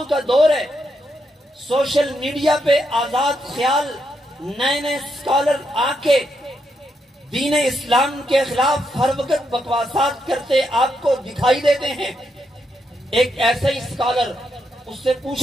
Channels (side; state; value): both; normal; correlation 0.80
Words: کا دور ہے، سوشل میڈیا پہ آزاد خیال نئے نئے اسکالر آ کے دین اسلام کے خلاف ہر وقت بکواسات کرتے آپ کو دکھائی دیتے ہیں. ایک ایسا ہی اسکالر، اس سے